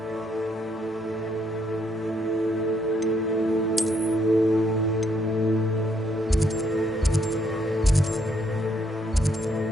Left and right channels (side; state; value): both; normal; correlation 0.72